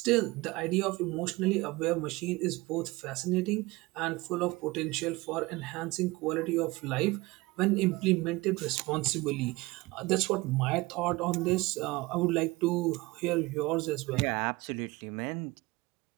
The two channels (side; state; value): left; quieter; 21.8 dB